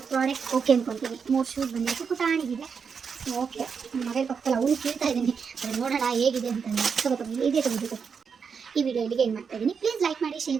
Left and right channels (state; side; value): quieter; left; 6.1 dB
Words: ಪ್ರಾಡಕ್ಟ್ ಓಕೆ ಅಂದ್ಕೊತೀನಿ. 3 ಶೂಸ್ ಬಂದಿತ್ತು, ಪುಟಾಣಿಗಿದೆ. ಓಕೆ, ನನ್ನ ಮಗಳ ಪಕ್ಕದಲ್ಲಿ ಅವನು ಕೇಳ್ತಾ ಇದ್ದೀನಿ, ಅದನ್ನು ನೋಡೋಣ ಹೇಗಿದೆ ಅಂತಂದರೆ. ಇದೇ ತಗೋಬೇಕು. ಈ ವಿಡಿಯೋ ಇಲ್ಲಿಗೆ ಏನು ಮಾಡ್ತಾ ಇದ್ದೀನಿ. ಪ್ಲೀಸ್ ಲೈಕ್ ಮಾಡಿ, ಶೇರ್